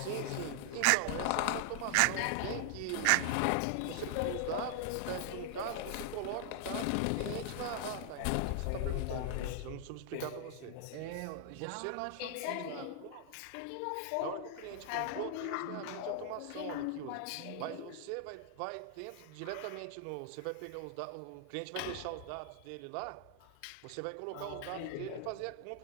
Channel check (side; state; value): both; different; correlation 0.00